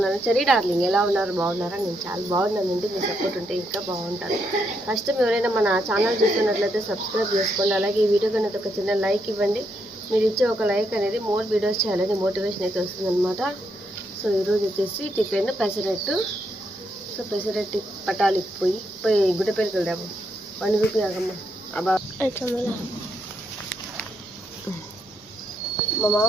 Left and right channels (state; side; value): normal; both; correlation 0.78